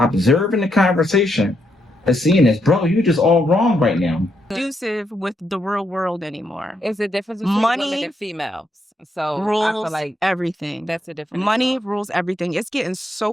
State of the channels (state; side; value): normal; both; correlation 0.79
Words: the conversation and seeing this. Bro, you just all wrong right now. Conducive with the real world anymore. It's a difference between women and females. So rules I feel like everything. That's a difference. Money rules everything. It's getting